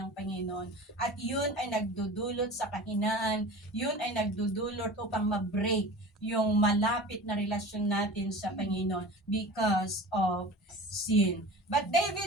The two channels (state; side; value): normal; both; correlation 0.36